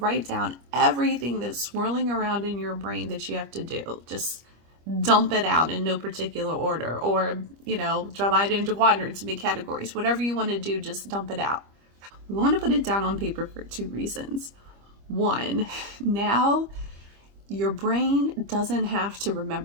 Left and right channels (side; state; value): left; late; 25 ms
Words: down everything that's swirling around in your brain that you have to do. Just dump it out in no particular order, or, divide it into quadrants and make categories. Whatever you want to do, just dump it out. We want to put it down on paper for 2 reasons. 1, now your brain doesn't have to